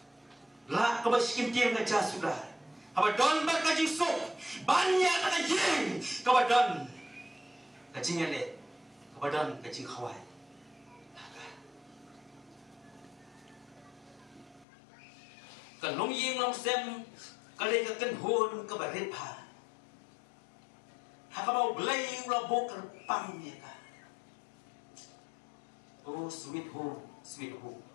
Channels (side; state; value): right; drops out; at 14.7 s